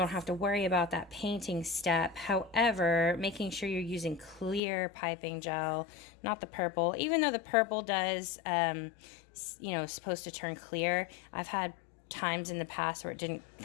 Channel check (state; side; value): drops out; right; at 4.6 s